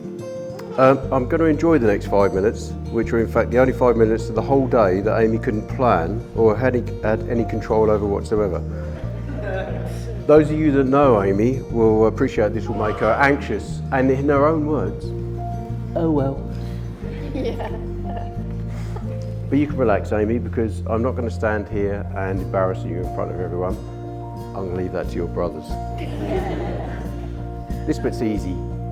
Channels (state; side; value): identical; both; correlation 1.00